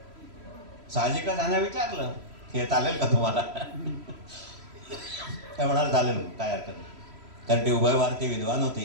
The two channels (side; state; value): left; late; 3.1 ms